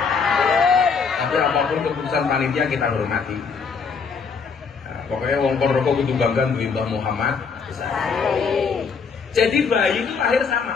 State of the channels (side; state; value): right; quieter; 5.5 dB